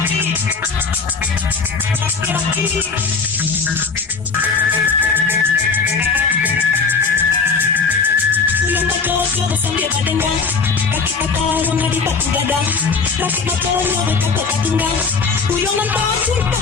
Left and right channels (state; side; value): quieter; right; 4.9 dB